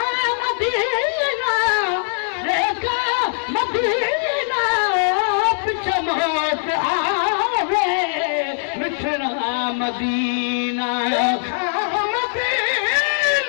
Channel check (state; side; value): silent; right; 65 dB below the other